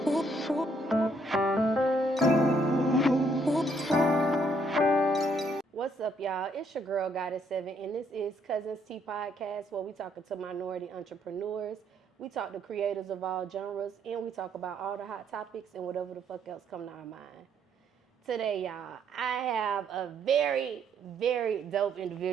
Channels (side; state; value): both; normal; correlation 0.70